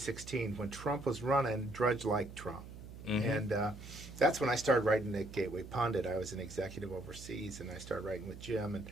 when Trump was running. Drudge liked Trump. Mm-hmm. And that's when I started writing at Gateway Pundit. I was an executive overseas, and I started writing with Jim.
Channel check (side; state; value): right; noise; hum, 13 dB below the sound